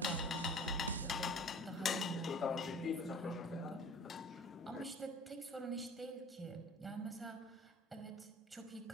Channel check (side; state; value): both; normal; correlation 0.46